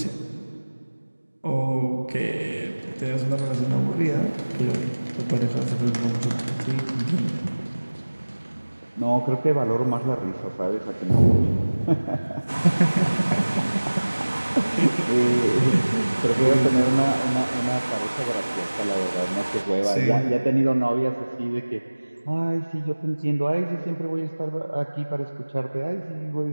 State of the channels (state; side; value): inverted; both; correlation -1.00